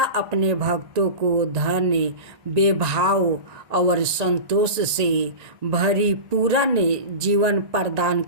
अपने भक्तों को धन बेभाव और संतोष से भरी पूर्ण जीवन प्रदान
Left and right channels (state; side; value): late; left; 1.8 ms